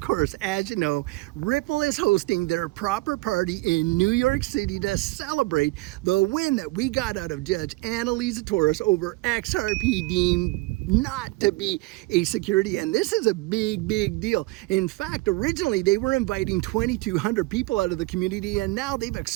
as you know, Ripple is hosting their proper party in New York City to celebrate the win that we got out of Judge Annalisa Torres over XRP deemed not to be a security. And this is a big deal. In fact, originally they were inviting 2,200 people out of the community, and now they've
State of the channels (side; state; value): left; quieter; 21.7 dB